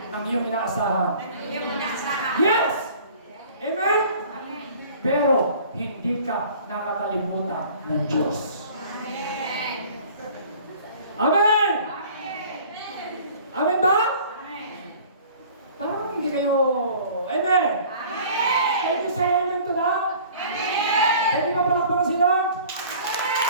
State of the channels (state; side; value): inverted; both; correlation -0.48